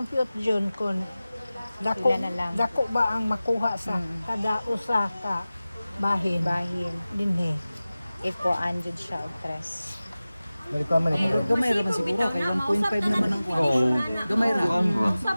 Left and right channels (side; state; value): both; inverted; correlation -0.97